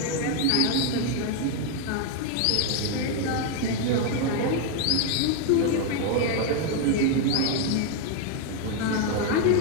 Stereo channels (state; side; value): different; both; correlation 0.01